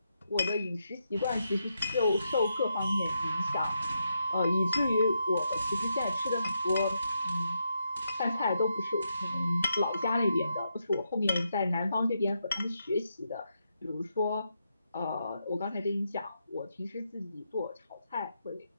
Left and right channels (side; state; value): both; inverted; correlation -0.82